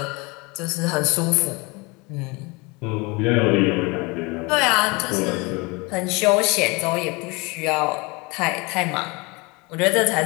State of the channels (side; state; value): right; quieter; 26.7 dB